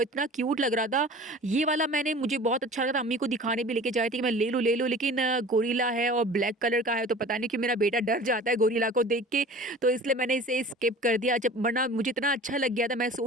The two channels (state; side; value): normal; both; correlation 0.42